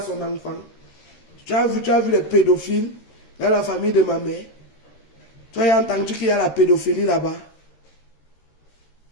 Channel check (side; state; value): right; late; 13 ms